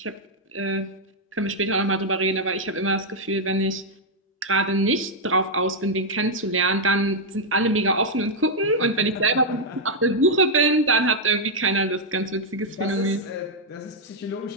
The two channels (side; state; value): both; normal; correlation -0.03